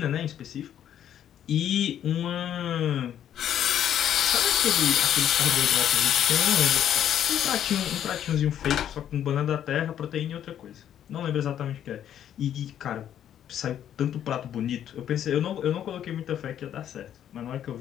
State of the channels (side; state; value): right; quieter; 10.2 dB